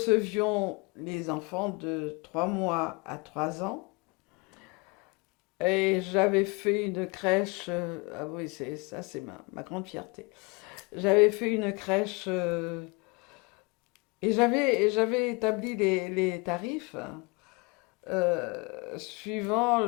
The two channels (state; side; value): quieter; right; 28.6 dB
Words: les enfants de 3 mois à 3 ans. Et j'avais fait une crèche, ah oui, c'est ma grande fierté. J'avais fait une crèche et j'avais établi les tarifs suivant